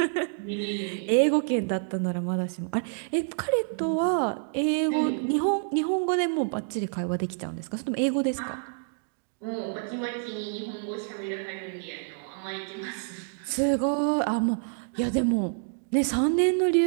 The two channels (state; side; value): silent; left; digital silence